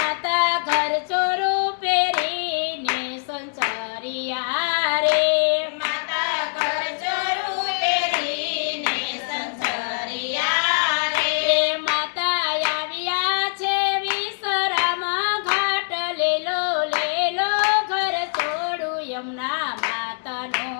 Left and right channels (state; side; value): silent; right; digital silence